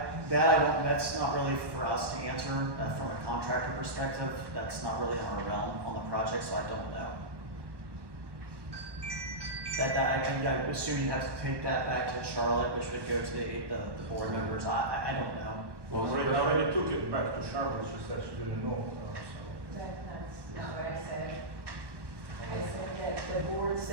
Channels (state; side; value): late; left; 1.1 ms